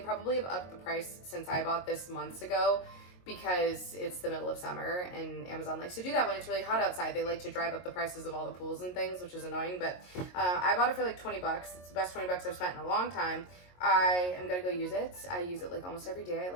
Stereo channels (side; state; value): right; late; 22 ms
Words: have upped the price since I bought this months ago, because it's the middle of summer and Amazon likes to do that when it's really hot outside. They like to drive up the prices of all the pools and things, which is annoying, but I bought it for like 20 bucks. It's the best 20 bucks I've spent in a long time. I am gonna go use it. I use it like almost every day. I